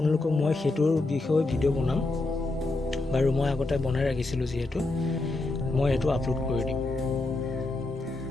মই সেইটোৰ বিষয়ে ভিডিঅ' বনাম। বাৰু মই আগতে বনাই ৰাখিছিলোঁ যিহেতু মই এইটো আপলোড কৰি দিম।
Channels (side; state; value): right; quieter; 3.0 dB